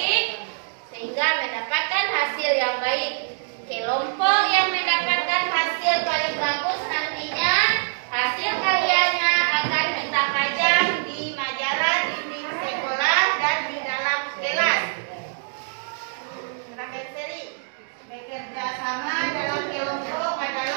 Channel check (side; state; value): left; silent; digital silence